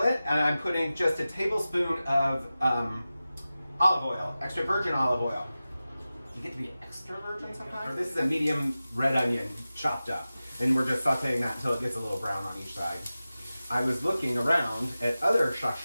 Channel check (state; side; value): inverted; both; correlation -0.95